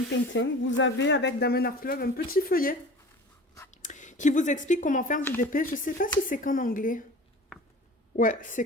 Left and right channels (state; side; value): normal; both; correlation 0.39